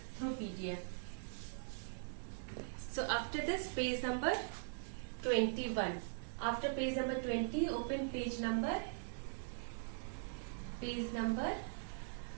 through PDF. So after this, page number 21. After page number 20, open page number 21.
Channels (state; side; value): silent; left; digital silence